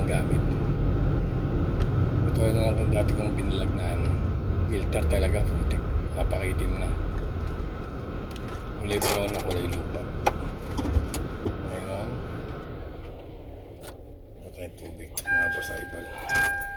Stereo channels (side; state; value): both; identical; correlation 1.00